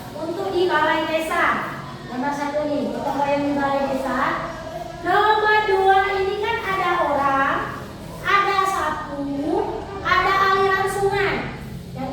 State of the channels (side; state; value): both; identical; correlation 1.00